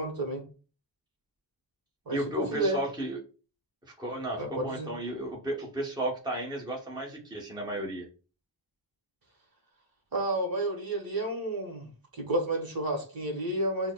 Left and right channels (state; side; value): normal; both; correlation -0.09